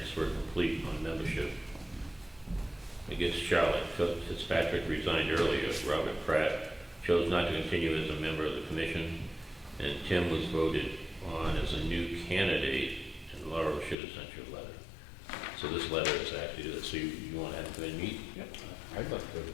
were complete on membership. I guess Charlotte Fitzpatrick resigned earlier. Robert Pratt chose not to continue as a member of the commission, and Tim was voted on as a new candidate, and Laura should have sent you a letter. So this letter is actually to this. So you want to have him come in and meet? I'd like to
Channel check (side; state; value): right; drops out; at 14.0 s